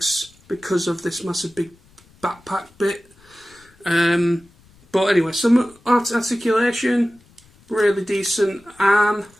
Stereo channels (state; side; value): noise; left; rumble, 29 dB below the sound